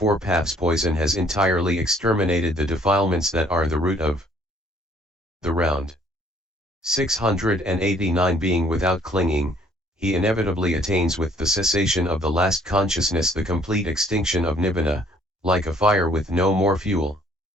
paths poison has entirely exterminated the defilements that are the root of the round. 689 Being without clinging, he inevitably attains with the cessation of the last consciousness the complete extinction of nibbana, like a fire with no more fuel.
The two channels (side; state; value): both; normal; correlation 0.61